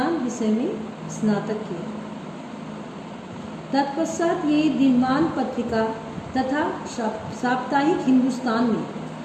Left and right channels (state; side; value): identical; both; correlation 1.00